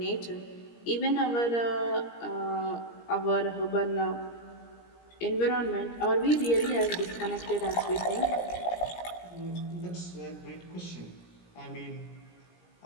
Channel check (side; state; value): right; late; 17 ms